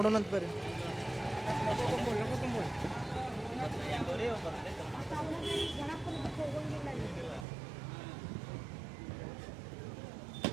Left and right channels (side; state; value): left; drops out; at 7.5 s